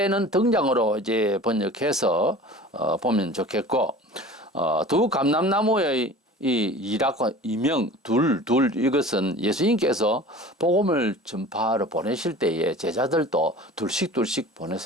등장으로 이제 번역해서 보면 좋겠고, 두 감람나무의 이 이라고 이명 둘 이것은 예수님께서 복음을 전파하러 보내실 때에 제자들도 둘씩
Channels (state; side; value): normal; both; correlation 0.41